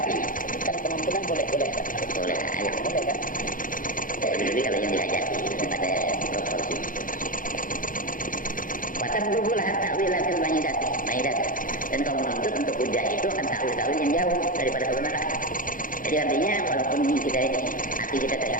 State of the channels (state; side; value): late; right; 0.39 ms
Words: apinya. Kalau kemampuan boleh. Boleh, ayo. Boleh kan? Jadi kalau yang dihajati ada proporsi. Watablughul ta'wilatil ba'idat. Dan kau menuntut untuk hujjah itu akan ta'wil-ta'wil yang jauh daripada kebenaran. Jadi artinya walaupun kita ini hati kita